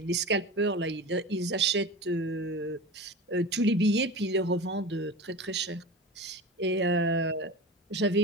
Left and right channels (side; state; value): both; normal; correlation 0.31